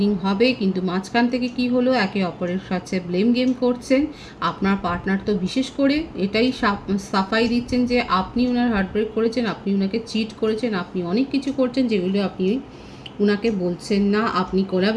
হবে, কিন্তু মাঝখান থেকে কি হলো, একে অপরের সাথে ব্লেম গেম করছেন। আপনার পার্টনার তো বিশেষ করে এটাই সাফাই দিচ্ছেন যে আপনি ওনার হার্টব্রেক করেছেন, আপনি ওনাকে চিট করেছেন, আপনি অনেক কিছু করছেন যেগুলো আপনি উনাকে বলছেন না। আপনি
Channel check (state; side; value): identical; both; correlation 1.00